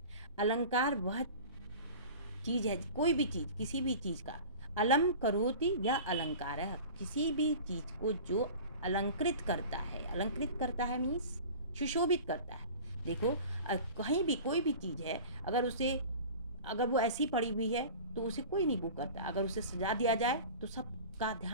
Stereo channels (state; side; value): inverted; both; correlation -0.38